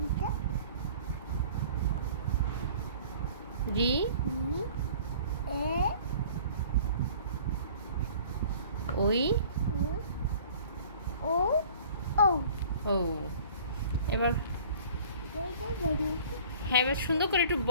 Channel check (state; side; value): inverted; both; correlation -0.49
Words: রি। ওই। ও। এবার হ্যাঁ, এবার সুন্দর করে একটু